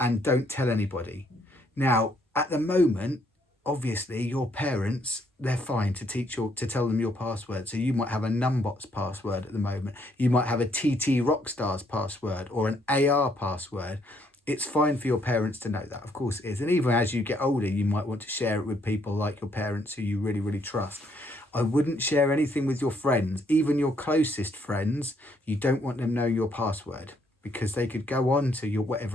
don't tell anybody. Now, at the moment, obviously your parents, they're fine to tell them your password. So you might have a Numbot's password at the moment. You might have a TT Rockstar's password or an AR password. It's fine for your parents to know that, of course it is. And even as you get older, you might want to share it with people like your parents who you really, really trust. I wouldn't share anything with your friends, even your closest friends. You don't want them knowing your password because they could go on to your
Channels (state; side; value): normal; both; correlation 0.70